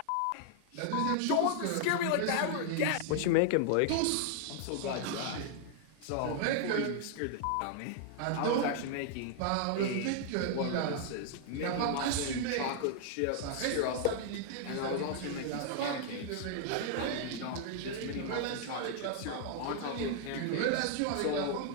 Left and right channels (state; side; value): different; both; correlation 0.00